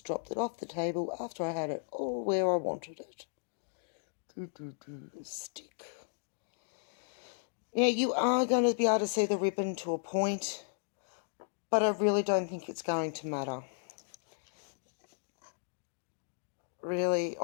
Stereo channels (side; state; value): right; silent; digital silence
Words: dropped it off the table after I had it all where I wanted it. Stick. Now you are going to be able to see the ribbon to a point, but I really don't think it's going to matter. Really,